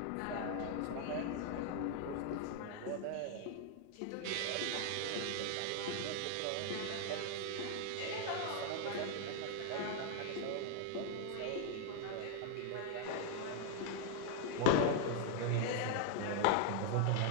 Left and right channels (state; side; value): different; both; correlation 0.00